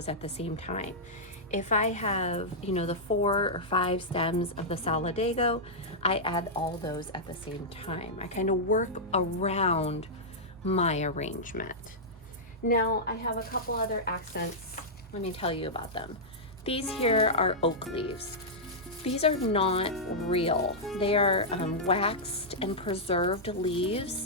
at the same time. If I have, the 4 or 5 stems of the Solidago, I add all those at the same time. I kind of work around my arrangement. Now I have a couple other accents. Let me tell you about them. These here are oak leaves. These are not real. They are waxed and preserved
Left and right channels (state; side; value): normal; both; correlation -0.09